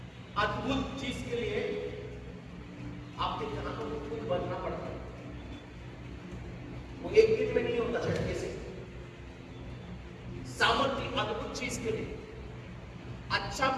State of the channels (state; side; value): identical; both; correlation 1.00